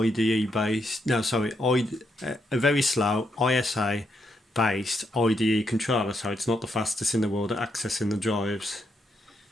based, a very slow ISA based IDE controller, so it's not the fastest in the world at accessing the drives.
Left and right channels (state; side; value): normal; both; correlation 0.79